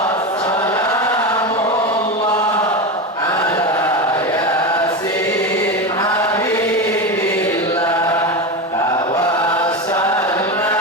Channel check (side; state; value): both; normal; correlation 0.19